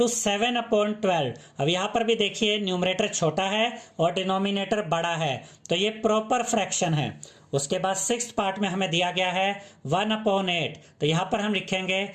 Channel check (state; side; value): identical; both; correlation 1.00